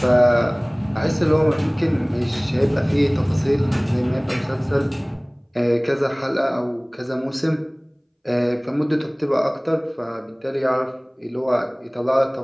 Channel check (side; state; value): both; identical; correlation 1.00